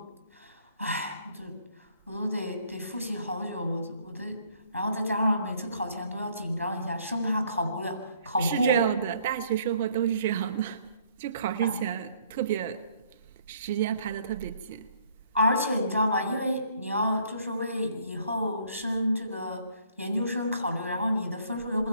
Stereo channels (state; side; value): inverted; both; correlation -0.62